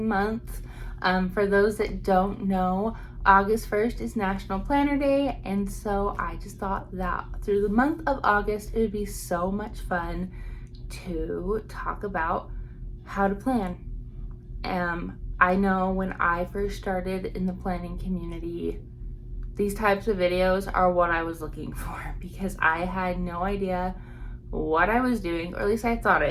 month. For those that don't know, August 1st is National Planner Day, and so I just thought that through the month of August, it would be so much fun to talk about how to plan. I know when I first started in the planning community, these types of videos are what I was looking for because I had no idea what I was doing, or at least I thought I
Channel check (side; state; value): both; identical; correlation 1.00